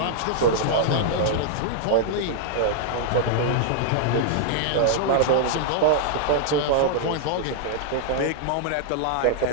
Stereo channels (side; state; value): both; different; correlation -0.01